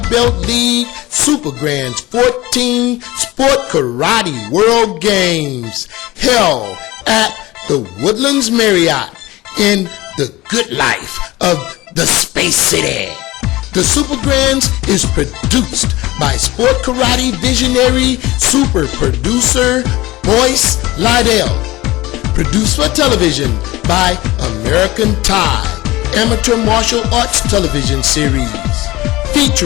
Belt League Super Grands 14 Sport Karate World Games held at the Woodlands Marriott in the good life of the Space City. The Super Grands is produced by Sport Karate visionary super producer Boyce Lydell. Produced for television by American Tide Amateur Martial Arts Television Series.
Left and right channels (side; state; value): right; quieter; 18.9 dB